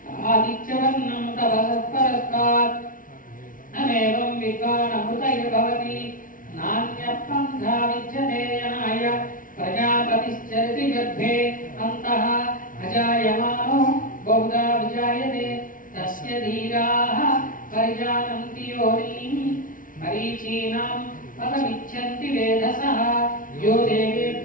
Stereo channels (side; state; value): right; late; 0.39 ms